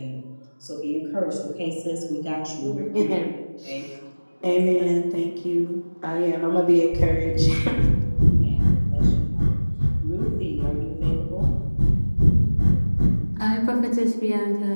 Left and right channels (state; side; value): inverted; both; correlation -1.00